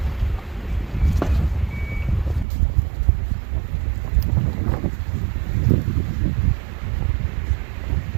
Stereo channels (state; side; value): drops out; left; at 2.5 s